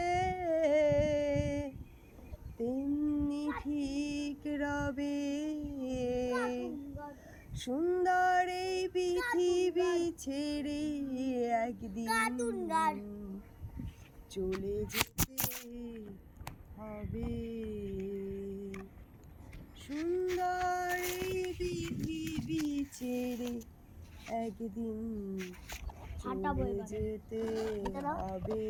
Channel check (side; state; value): both; identical; correlation 1.00